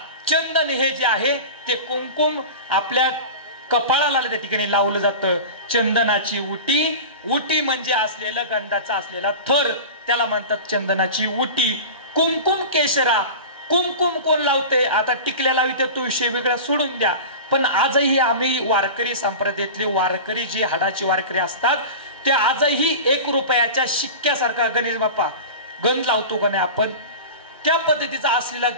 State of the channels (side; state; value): both; inverted; correlation -0.31